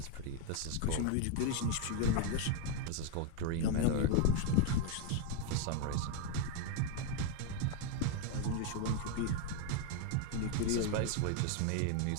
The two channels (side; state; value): both; different; correlation 0.01